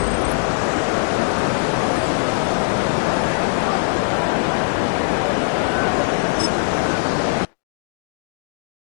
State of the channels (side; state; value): right; silent; 62 dB below the other